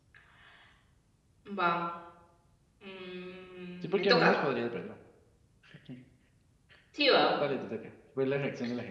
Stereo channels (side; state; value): both; identical; correlation 1.00